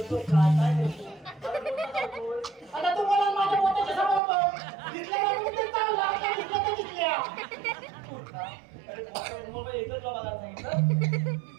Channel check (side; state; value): left; drops out; at 4.2 s